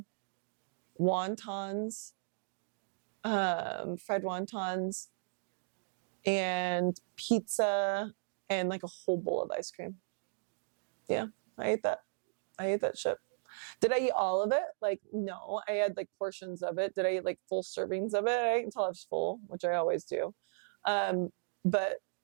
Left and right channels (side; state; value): left; silent; digital silence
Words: wontons, fried wontons, and pizza, and like a whole bowl of ice cream. Yeah. I ate that shit. Did I eat all of it? Like, no, I had like portions of it. Did I eat like full servings of it? I ate until I was full, which I always do. But,